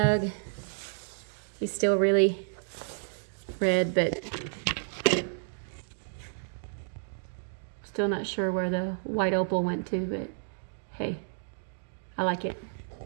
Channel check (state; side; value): silent; left; digital silence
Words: He's still really red, but still not sure where the white opal went to, but hey, I like it.